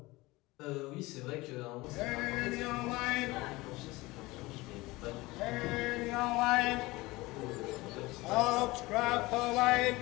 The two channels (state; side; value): quieter; right; 21.1 dB